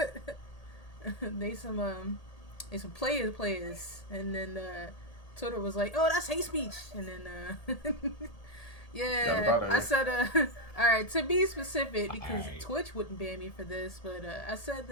They some players, and then Twitter was like, oh, that's hate speech, and then I said all right, to be specific, because Twitch wouldn't ban me for this, but I said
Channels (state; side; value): late; right; 1.8 ms